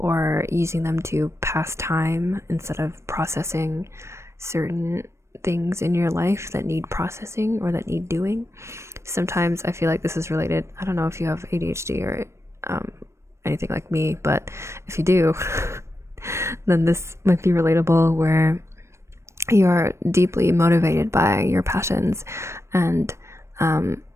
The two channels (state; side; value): late; left; 0.13 ms